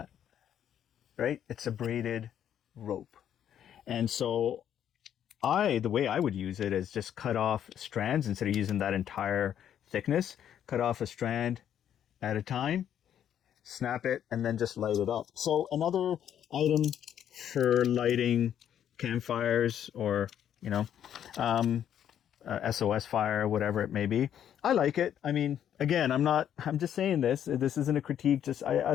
right? It's a braided rope. And so the way I would use it is just cut off strands instead of using that entire thickness. Cut off a strand at a time, snap it, and then just light it up. So another item for lighting campfires, or, you know, SOS fire, whatever it may be. I like it. I mean, again, I'm just saying this isn't a critique. Just, I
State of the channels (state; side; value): quieter; right; 9.9 dB